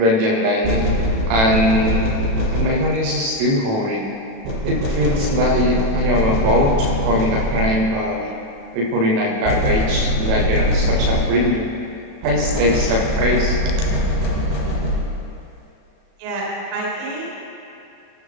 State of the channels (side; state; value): left; late; 36 ms